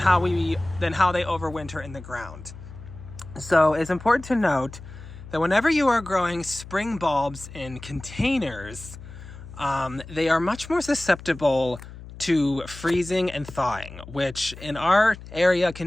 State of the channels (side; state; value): left; noise; hum, 15 dB below the sound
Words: they overwinter in the ground. So it's important to note that whenever you are growing spring bulbs in containers, they are much more susceptible to freezing and thawing, which in our area